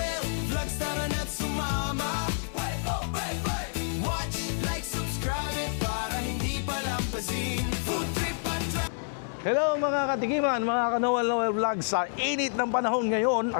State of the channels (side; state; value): right; silent; digital silence